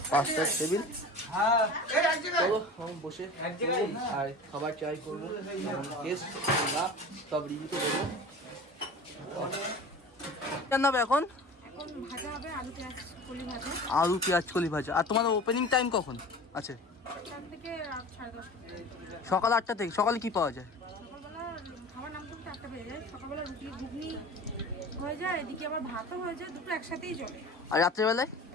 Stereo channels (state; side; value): normal; both; correlation 0.37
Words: 5টা টেবিল। চলো আমি বসে আর খাবার ট্রাই করবো, টেস্ট না সব রিভিউতে দেবো। রান্না হবে এখন? আলু পেঁয়াজ কলি ভাজা। আর তোমাদের ওপেনিং টাইম কখন আছে? সকাল 8টা থেকে। সকালে কি পাওয়া যায়? আর রাত্রেবেলায়?